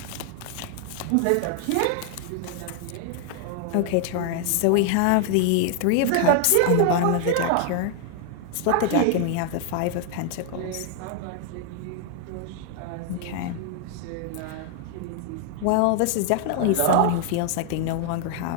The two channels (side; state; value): both; different; correlation 0.00